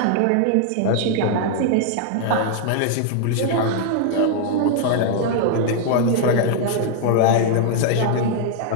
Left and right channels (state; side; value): different; both; correlation 0.00